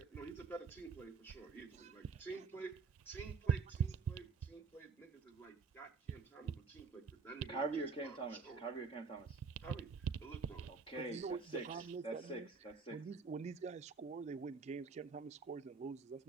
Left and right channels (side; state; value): left; quieter; 5.1 dB